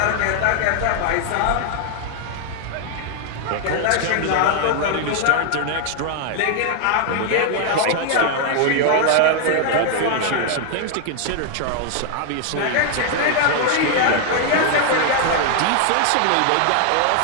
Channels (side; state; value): both; different; correlation 0.00